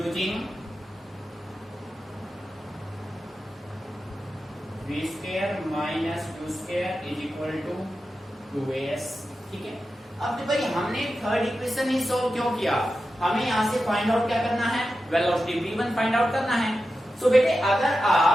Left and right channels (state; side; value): normal; both; correlation 0.91